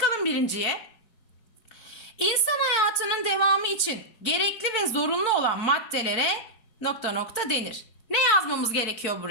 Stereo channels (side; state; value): right; late; 4.7 ms